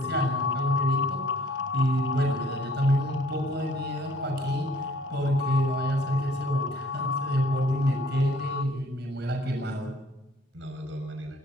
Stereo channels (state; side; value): normal; both; correlation 0.58